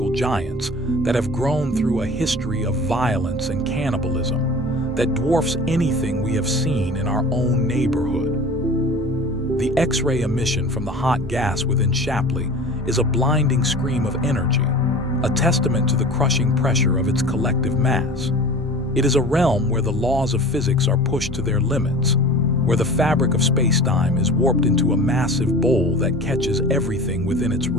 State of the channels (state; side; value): normal; both; correlation 0.38